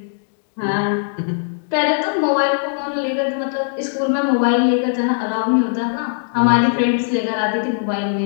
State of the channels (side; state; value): right; silent; digital silence